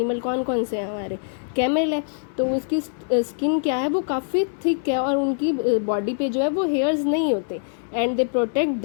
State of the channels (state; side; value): silent; right; digital silence